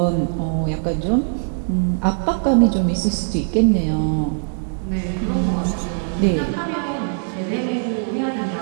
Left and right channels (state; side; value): silent; left; digital silence